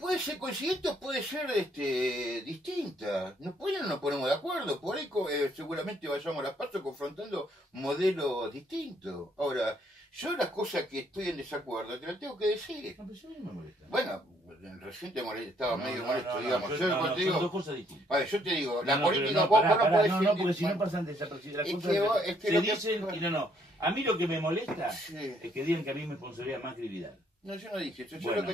ser coincidente o puede ser distinta. No nos ponemos de acuerdo, por ahí seguramente vayamos a las pasos confrontando modelos distintos. Ahora, yo las cosas que estoy en desacuerdo te las tengo que decir. No, pero eso a mí me molesta. Bueno, recién estaba medio molesto, digamos. Yo, Yo cuando te son digo, dos cosas distintas. a ver, yo te digo, la No, política, pero vos pará, no pará, podés no, decir- porque si no bueno, pasan desapercibidas. Las es cosas que se lo que- dicen y no. A mí lo que me molesta Sí. es que digan que a mí me sponsoría Macri y Vidal. No, yo no dije eso. Yo Bueno, lo que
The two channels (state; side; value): normal; both; correlation 0.68